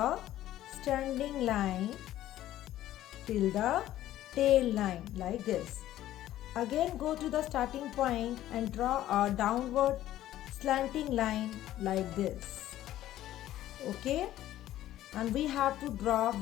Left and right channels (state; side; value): quieter; right; 13.5 dB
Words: standing line till the tail line like this. Again go to the starting point and draw a downward slanting line like this. Okay? And we have to draw